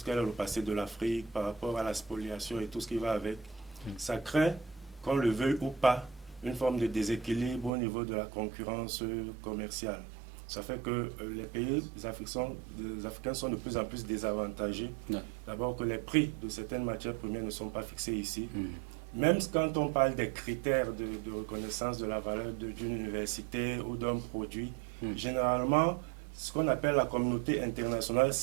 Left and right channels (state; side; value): drops out; left; at 7.7 s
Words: quel est le passé de l'Afrique par rapport à la spoliation et tout ce qui va avec. Ça crée, qu'on le veuille ou pas, une forme de déséquilibre au niveau de la concurrence commerciale. Ça fait que les pays africains sont de plus en plus désavantagés. D'abord que les prix de certaines matières premières ne sont pas fixés ici. Même quand on parle des critères de reconnaissance de la valeur d'une université ou d'un produit, généralement, ce qu'on appelle la communauté internationale